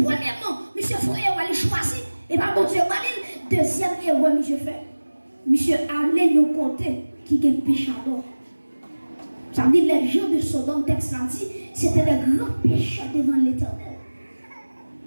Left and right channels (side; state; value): both; inverted; correlation -1.00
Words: monsieur faut aller choisir. Et pas bon Dieu, deuxième erreur, monsieur fait. Monsieur allait nous compter qui est péchador. Ça veut dire les gens de Sodome, texte là dit, c'était des grands pécheurs devant l'Éternel.